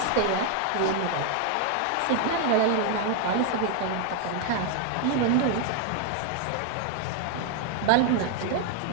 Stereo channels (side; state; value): both; different; correlation 0.00